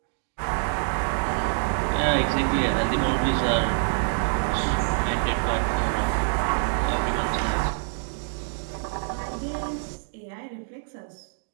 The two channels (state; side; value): silent; left; digital silence